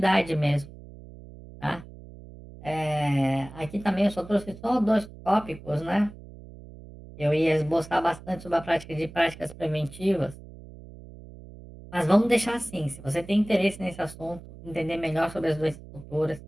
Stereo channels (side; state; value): right; noise; hum, 17 dB below the sound